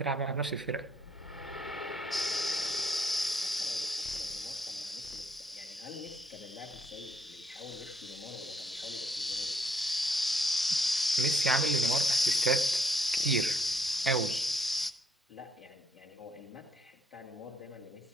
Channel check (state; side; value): normal; both; correlation 0.72